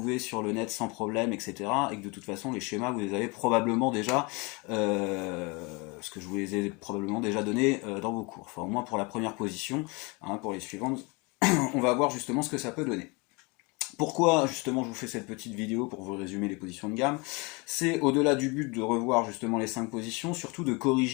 sur le net sans problème, etc. Et que de toute façon, les schémas, vous les avez probablement déjà, parce que je vous les ai probablement déjà donnés dans vos cours. Enfin, au moins pour la première position, hein, pour les suivantes, on va voir justement ce que ça peut donner. Pourquoi justement je vous fais cette petite vidéo pour vous résumer les positions de gamme? C'est au-delà du but de revoir justement les 5 positions, surtout de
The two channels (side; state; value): right; quieter; 28.3 dB